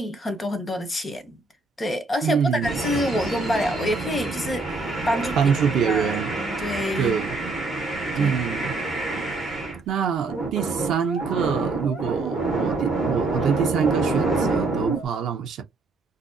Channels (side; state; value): left; quieter; 3.5 dB